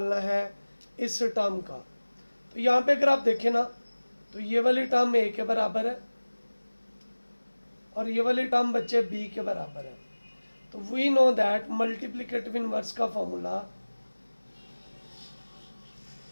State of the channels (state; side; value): inverted; both; correlation -1.00